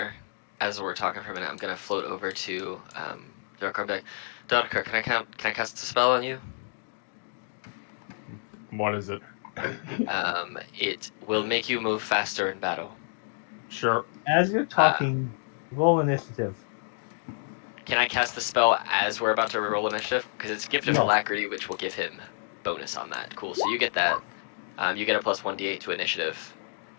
as we're talking for a minute, I'm gonna float over to Darkar back. Darkar, can I cast a spell on you? What is it? It will make you move faster in battle. Sure. As you're talking, roll initiative. Can I cast the spell as we're about to roll initiative? Because it's Gift of No. Alacrity, which will give him bonus on that. Cool. So you get that. You get a plus 1d8 to initiative,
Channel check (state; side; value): silent; right; digital silence